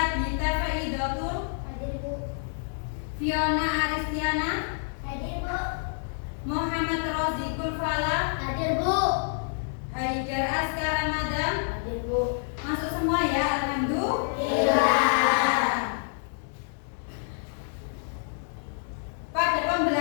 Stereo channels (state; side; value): silent; right; digital silence